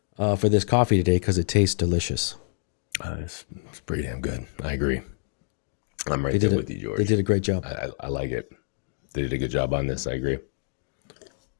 for this coffee today because it tastes delicious. It's pretty damn good. I agree. I'm right there with you, George. They did a great job. I like it. They did a good job on this. I agree.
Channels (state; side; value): silent; right; digital silence